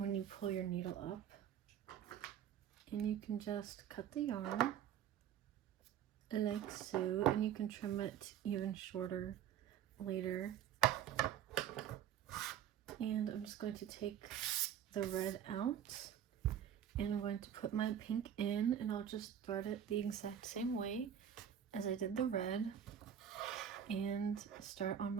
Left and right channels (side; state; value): left; quieter; 9.5 dB